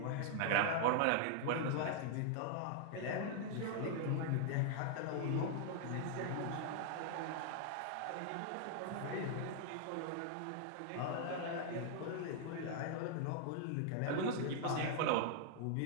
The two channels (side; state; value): both; different; correlation 0.00